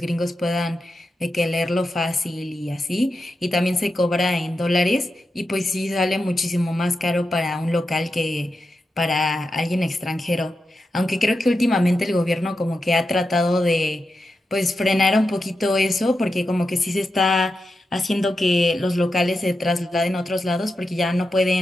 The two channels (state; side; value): normal; both; correlation 0.89